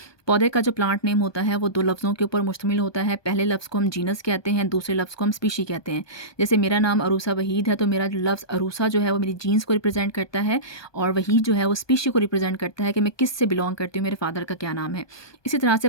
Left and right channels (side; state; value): right; late; 1.2 ms